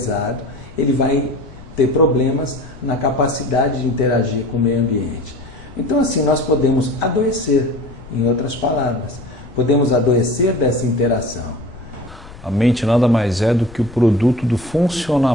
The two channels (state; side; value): noise; left; rumble, 18 dB below the sound